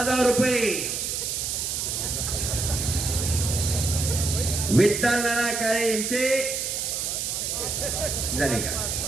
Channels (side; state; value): right; noise; hiss, 1 dB below the sound